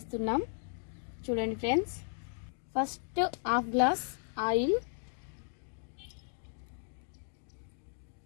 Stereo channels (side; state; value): right; silent; 54 dB below the other